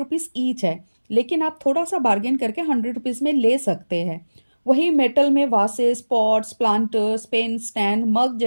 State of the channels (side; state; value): both; inverted; correlation -1.00